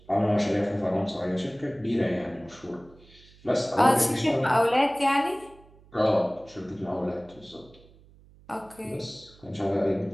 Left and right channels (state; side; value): noise; right; hum, 26 dB below the sound